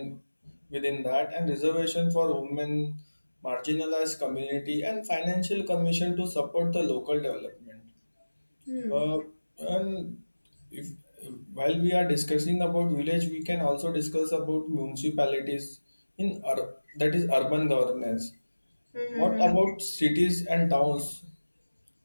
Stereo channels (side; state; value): both; inverted; correlation -1.00